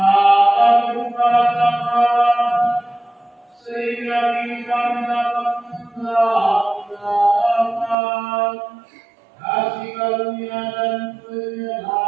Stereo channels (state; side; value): drops out; left; at 8.0 s